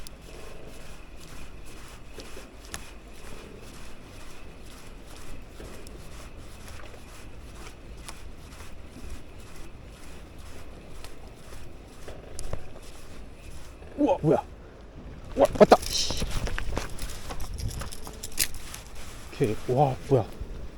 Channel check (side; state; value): both; identical; correlation 1.00